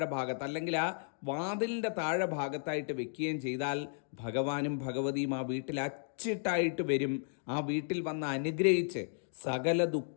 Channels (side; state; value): right; silent; digital silence